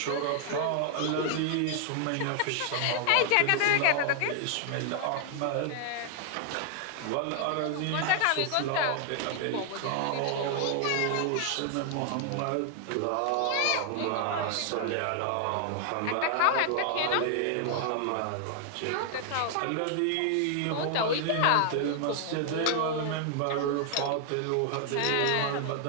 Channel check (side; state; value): both; different; correlation 0.00